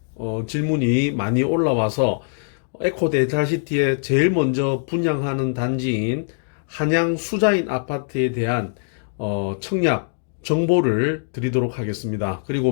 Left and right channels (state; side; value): silent; right; digital silence